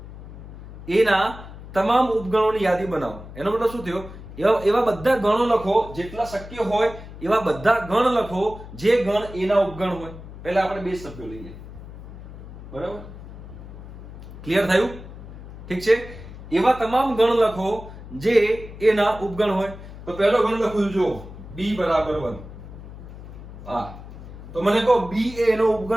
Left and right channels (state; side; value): noise; left; hum, 14 dB below the sound